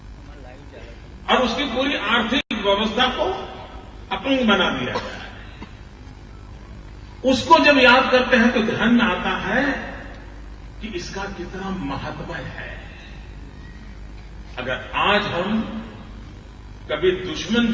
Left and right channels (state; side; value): identical; both; correlation 1.00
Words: और उसकी पूरी आर्थिक व्यवस्था को अपंग बना दिया जाए। उसको जब याद करते हैं तो ध्यान में आता है कि इसका कितना महत्व है। अगर आज हम कभी दुश्मन